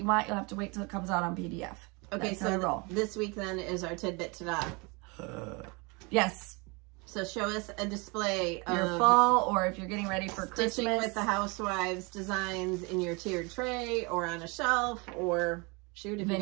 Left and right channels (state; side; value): quieter; left; 28.8 dB